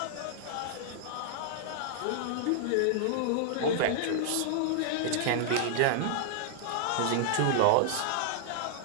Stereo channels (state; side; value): different; both; correlation -0.01